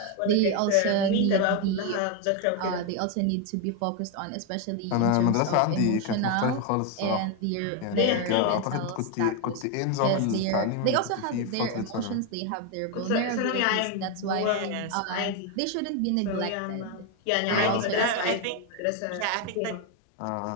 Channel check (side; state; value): both; different; correlation 0.02